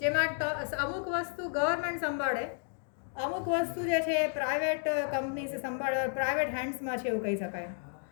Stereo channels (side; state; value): right; silent; 56 dB below the other